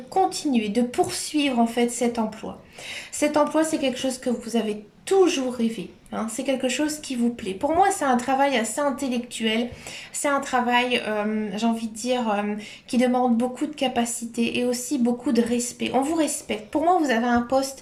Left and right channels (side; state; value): both; identical; correlation 1.00